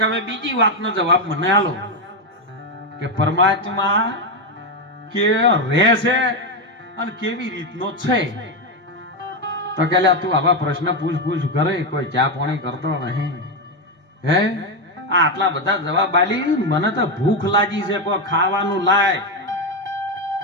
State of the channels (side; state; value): both; normal; correlation 0.07